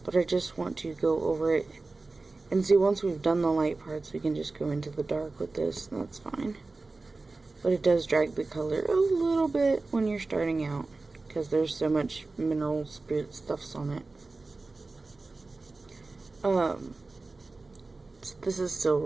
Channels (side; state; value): left; quieter; 3.5 dB